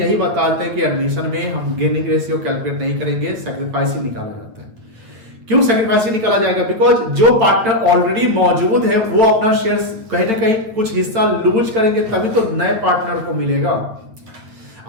बताते हैं कि एडमिशन में हम गेनिंग रेशियो कैलकुलेट नहीं करेंगे, सैक्रिफाइसिंग निकाला जाता है। क्यों सैक्रिफाइस निकाला जाएगा? बिकॉज जो पार्टनर ऑलरेडी मौजूद है वो अपना शेयर कहीं ना कहीं कुछ हिस्सा लूज करेंगे, तभी तो नए पार्टनर को मिलेगा।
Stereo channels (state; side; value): late; left; 8.8 ms